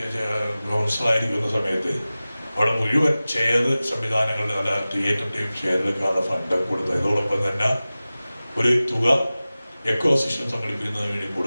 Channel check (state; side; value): inverted; both; correlation -0.97